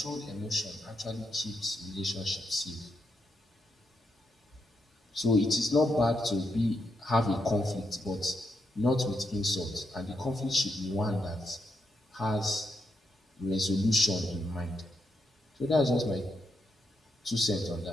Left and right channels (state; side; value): normal; both; correlation 0.82